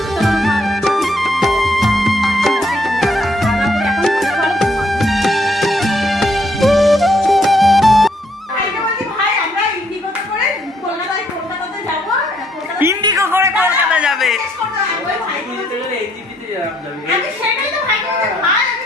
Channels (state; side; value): normal; both; correlation 0.70